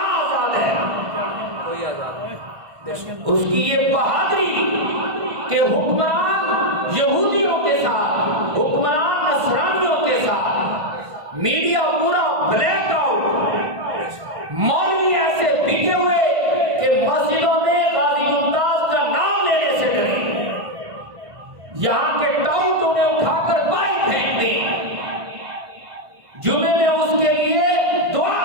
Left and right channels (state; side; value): late; left; 1.5 ms